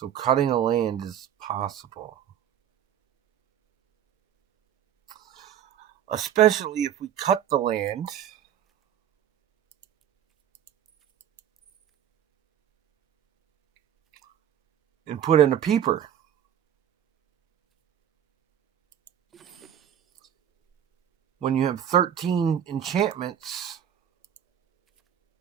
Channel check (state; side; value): quieter; left; 10.0 dB